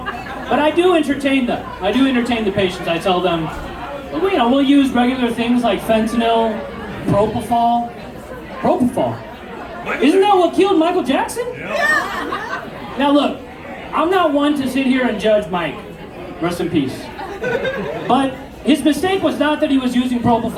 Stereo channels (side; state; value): both; identical; correlation 1.00